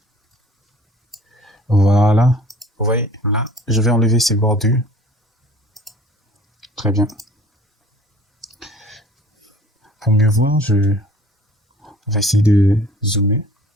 Voilà. Vous voyez là, je vais enlever ces bordures. Très bien. Pour mieux voir, on va essayer de zoomer.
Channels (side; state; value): both; normal; correlation 0.50